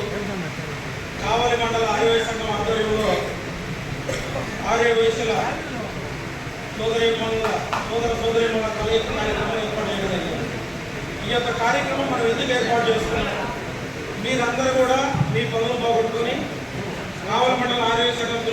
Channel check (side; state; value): both; identical; correlation 1.00